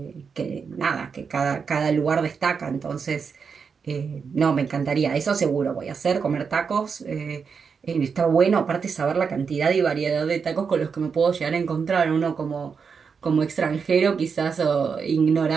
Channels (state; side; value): quieter; left; 5.9 dB